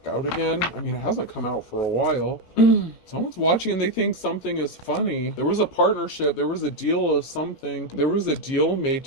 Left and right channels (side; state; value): right; late; 17 ms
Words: out again. I mean, it hasn't come out for a while. Someone's watching and they think something is funny. There was a partnership. There was a deal of something. There was a deal made